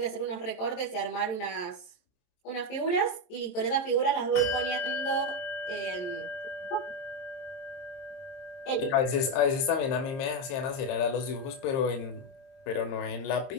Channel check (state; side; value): late; right; 22 ms